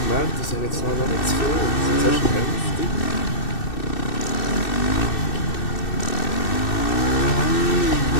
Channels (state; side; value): late; right; 2.6 ms